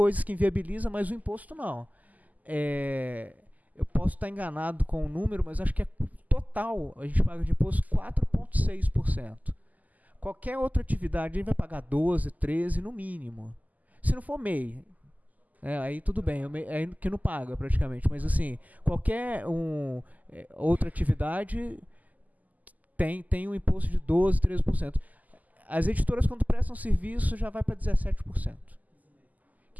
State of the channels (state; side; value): late; left; 0.079 ms